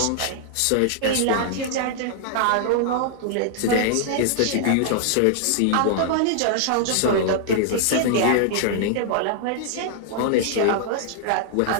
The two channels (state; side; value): different; both; correlation -0.01